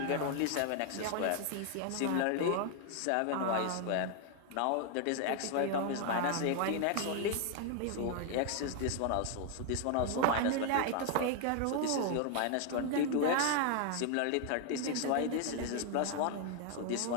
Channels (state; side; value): different; both; correlation 0.00